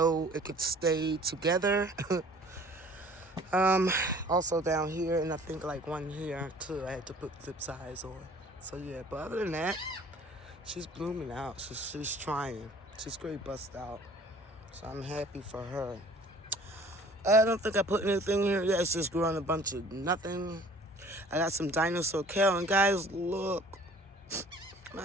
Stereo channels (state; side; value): normal; both; correlation 0.51